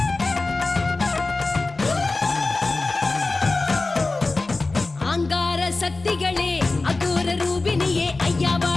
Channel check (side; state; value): right; quieter; 3.4 dB